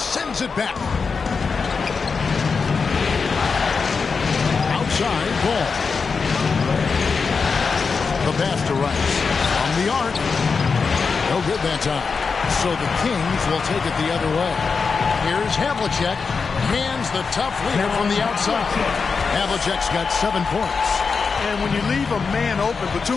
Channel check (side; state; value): right; quieter; 5.1 dB